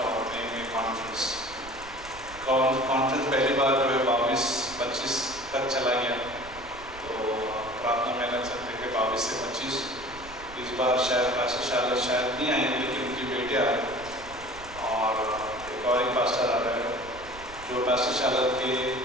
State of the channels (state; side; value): noise; right; rumble, 18 dB below the sound